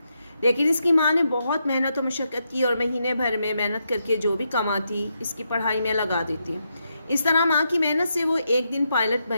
لیکن اس کی ماں نے بہت محنت و مشقت کی اور مہینے بھر میں محنت کر کے جو بھی کماتی اس کی پڑھائی میں لگا دیتی۔ اس طرح ماں کی محنت سے وہ ایک دن پائلٹ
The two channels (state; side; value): inverted; both; correlation -0.82